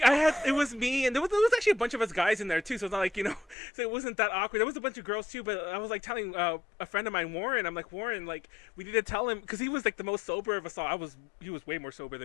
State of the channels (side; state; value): right; drops out; at 3.6 s